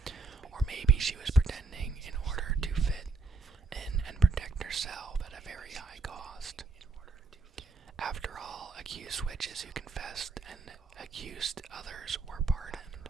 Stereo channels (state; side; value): quieter; left; 3.7 dB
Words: Or maybe she was pretending in order to fit in and protect herself at a very high cost. After all, accused witches who confessed and accused others were pardoned.